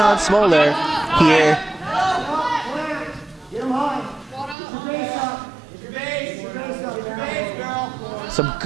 Smoller here. Some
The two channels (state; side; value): drops out; left; at 4.5 s